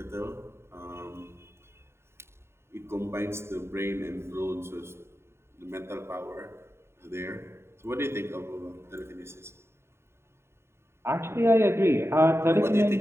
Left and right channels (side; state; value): left; late; 0.12 ms